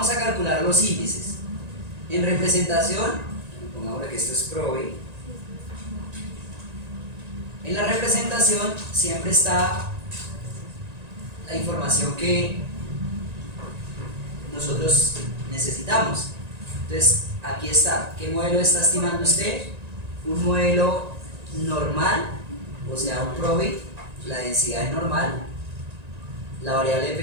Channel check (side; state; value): left; late; 1.9 ms